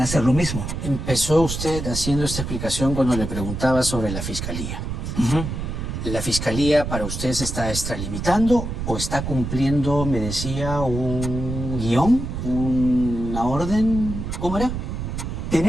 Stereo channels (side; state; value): right; noise; rumble, 5 dB below the sound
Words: hacer lo mismo. Empezó usted haciendo esta explicación cuando le preguntaba sobre la Fiscalía. ¿La Fiscalía para usted se está extralimitando o está cumpliendo, me decía, un guión, una orden? ¿Cómo era?